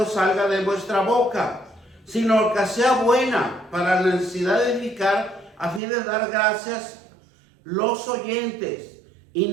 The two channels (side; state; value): left; drops out; at 5.8 s